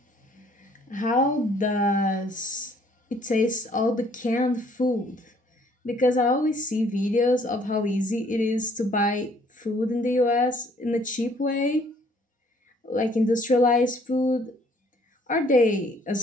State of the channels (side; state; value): both; normal; correlation 0.61